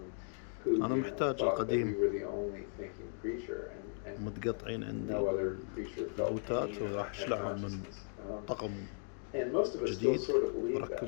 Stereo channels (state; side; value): silent; right; 53 dB below the other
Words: who thought that we were the only thinking creature, and no other creature felt pain or had consciousness. And most of us still sort of believe